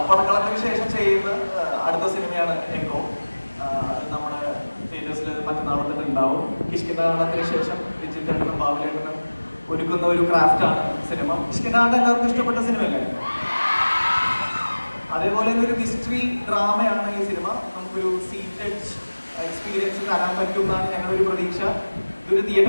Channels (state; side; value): inverted; both; correlation -1.00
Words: പടക്കളത്തിന് ശേഷം ചെയ്യുന്ന അടുത്ത സിനിമയാണ് എക്കോ. നമ്മുടെ തിയേറ്റേഴ്സിൽ മറ്റന്നാൾ തന്നെ ഉണ്ടാവും. കിഷ്കിന്താണ്ടത്തിന് ശേഷം വിജിത്തേട്ടനും ബാബുലേട്ടനും ഒരുക്കുന്ന ഒരു ക്രാഫ്റ്റാണ് സിനിമ. കിഷ്കിന്താണ്ട് എല്ലാവർക്കും ഇഷ്ടപ്പെട്ട സിനിമയല്ലേ? അതേപോലെ ഒരു മിസ്റ്ററി ഡ്രാമയാണ് ഈ സിനിമ. നമുക്കൊരു സീറ്റഡ് എക്സ്പീരിയൻസ് തരാൻ പറ്റും എന്നാണ് ഞങ്ങളുടെ ഒരു പ്രതീക്ഷ. ഇതൊരു